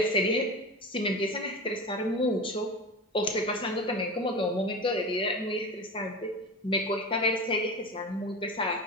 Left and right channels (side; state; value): both; normal; correlation 0.28